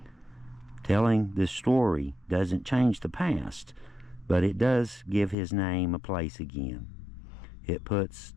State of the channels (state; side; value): drops out; right; at 5.4 s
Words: Telling this story doesn't change the past, but it does give his name a place again. It puts